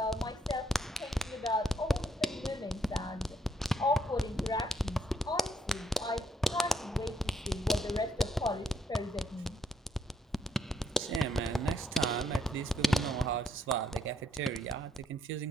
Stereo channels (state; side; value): normal; both; correlation 0.72